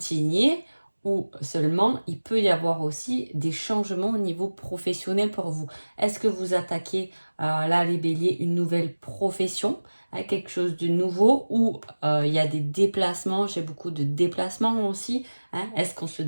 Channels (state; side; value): inverted; both; correlation -1.00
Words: ou seulement il peut y avoir aussi des changements au niveau professionnel pour vous. Est-ce que vous attaquez là les béliers une nouvelle profession, quelque chose de nouveau ou il y a des déplacements, j'ai beaucoup de déplacements aussi. Est-ce qu'on se